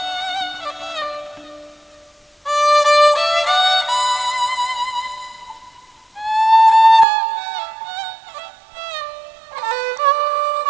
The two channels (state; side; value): drops out; left; at 7.1 s